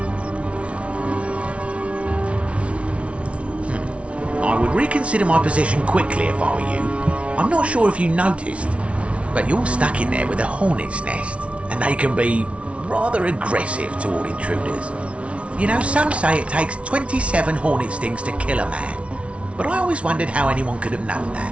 I would reconsider my position quickly if I were you. I'm not sure if you noticed, but you're stuck in there with a hornet's nest, and they can be rather aggressive toward intruders. You know, some say it takes 27 hornet stings to kill a man, but I always wondered how anyone could have known that.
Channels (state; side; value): late; left; 0.061 ms